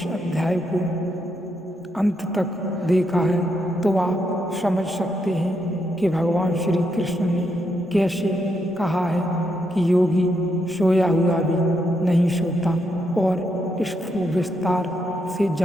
अध्याय को अंत तक देखा है तो आप समझ सकते हैं कि भगवान श्री कृष्ण ने कैसे कहा है कि योगी सोया हुआ भी नहीं सोता। और इसको विस्तार से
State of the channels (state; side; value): normal; both; correlation 0.80